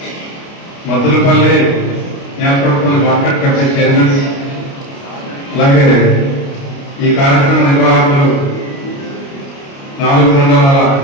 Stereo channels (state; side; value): late; right; 29 ms